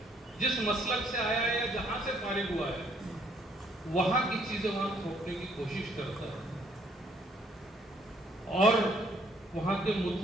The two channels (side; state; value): both; normal; correlation 0.65